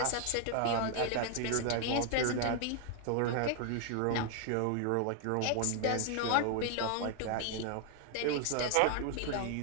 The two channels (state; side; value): different; both; correlation 0.00